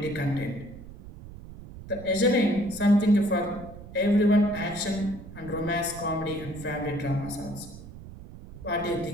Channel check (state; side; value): noise; right; rumble, 15 dB below the sound